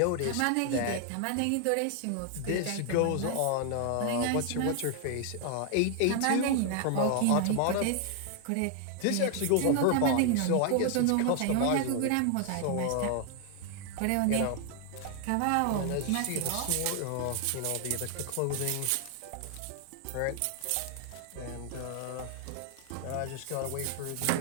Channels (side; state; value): both; different; correlation 0.00